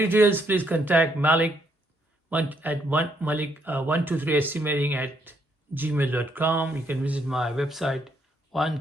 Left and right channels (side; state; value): both; normal; correlation 0.73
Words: please contact Malik at Malik123estimating@gmail.com. You can visit my website